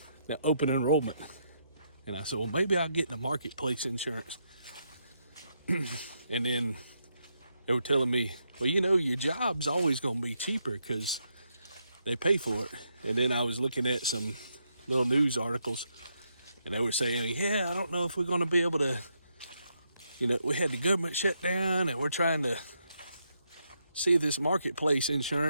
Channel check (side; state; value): both; inverted; correlation -0.79